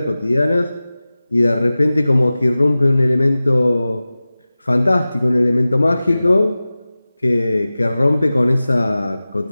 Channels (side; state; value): both; inverted; correlation -0.97